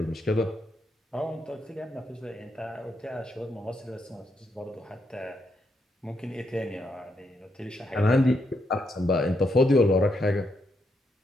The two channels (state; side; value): normal; both; correlation 0.79